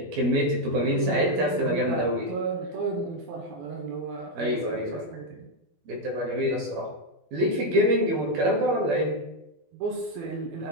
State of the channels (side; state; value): left; late; 12 ms